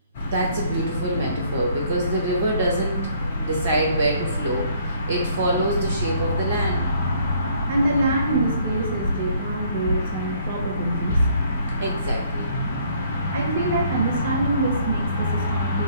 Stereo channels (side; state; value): both; inverted; correlation -0.63